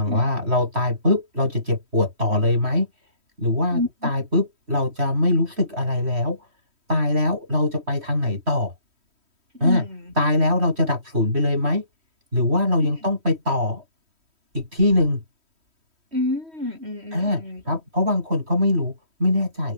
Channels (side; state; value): left; late; 3.1 ms